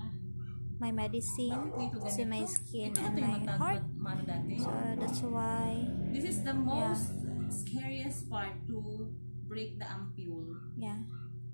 my medicine to my skin and my heart. So that's why this is the most scariest part, to break the ampule. Yeah.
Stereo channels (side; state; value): both; inverted; correlation -1.00